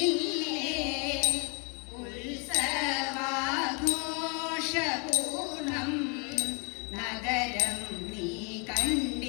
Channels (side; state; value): right; quieter; 33.8 dB